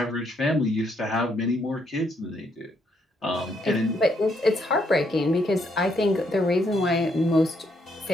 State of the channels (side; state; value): both; normal; correlation 0.74